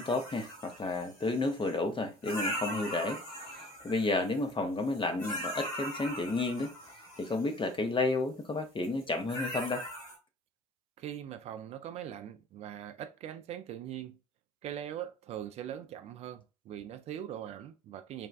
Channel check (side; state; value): both; normal; correlation 0.49